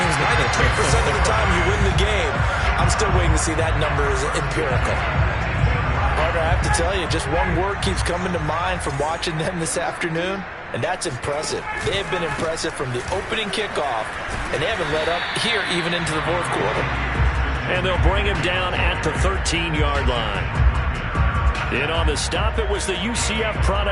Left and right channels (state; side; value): identical; both; correlation 1.00